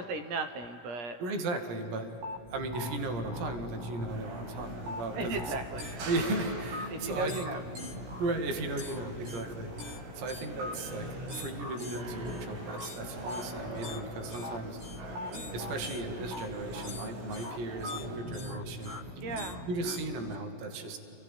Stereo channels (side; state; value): left; late; 17 ms